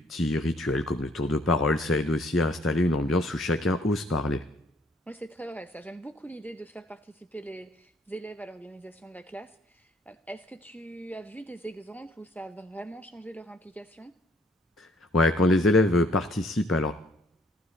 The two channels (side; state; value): both; normal; correlation 0.63